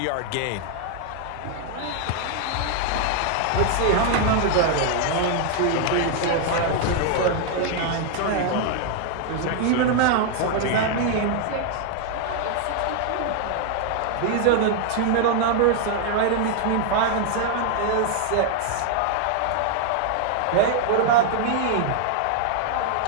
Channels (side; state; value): both; different; correlation 0.00